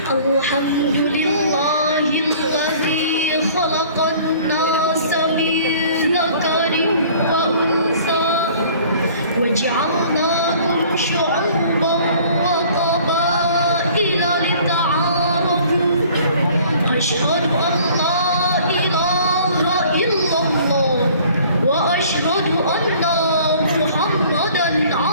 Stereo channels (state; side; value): inverted; both; correlation -0.52